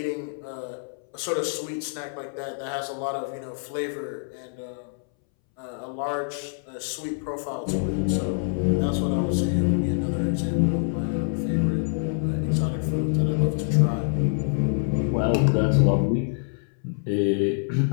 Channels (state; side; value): silent; right; 61 dB below the other